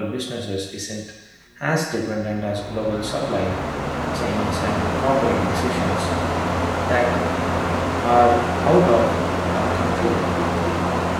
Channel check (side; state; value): both; identical; correlation 1.00